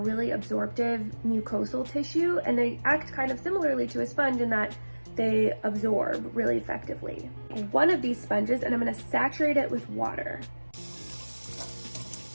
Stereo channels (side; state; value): both; inverted; correlation -1.00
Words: absorptive mucosal tissue, and they act kind of similarly to a sponge in that they absorb really effectively. One of these sponges, and I'm going to saturate it with water.